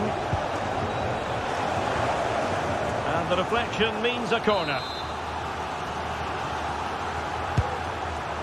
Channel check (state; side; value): identical; both; correlation 1.00